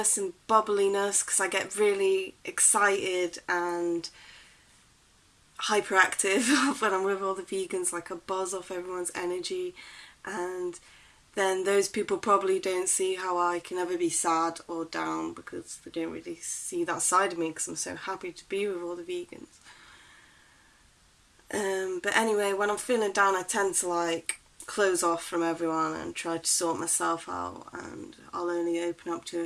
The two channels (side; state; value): both; identical; correlation 1.00